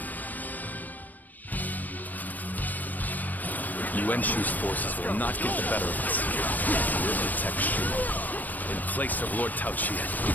Yuan Shu's forces will not get the better of us. We'll protect Shu in place of Lord Tao Qian.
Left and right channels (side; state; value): right; late; 0.085 ms